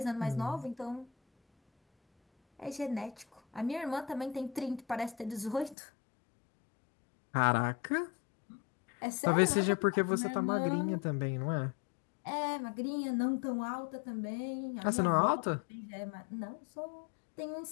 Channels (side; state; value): right; drops out; at 5.8 s